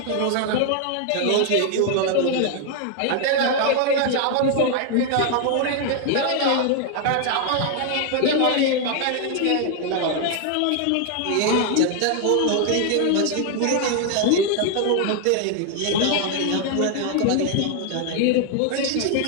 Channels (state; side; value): different; both; correlation 0.00